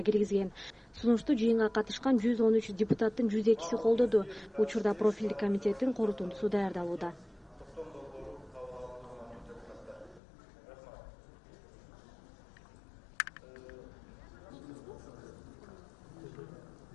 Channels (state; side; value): drops out; right; at 10.2 s